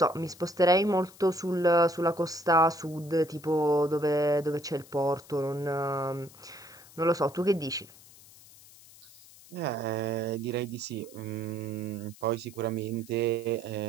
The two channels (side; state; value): left; noise; hiss, 22 dB below the sound